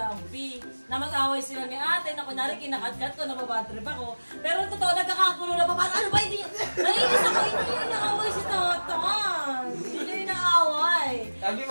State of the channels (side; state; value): both; inverted; correlation -1.00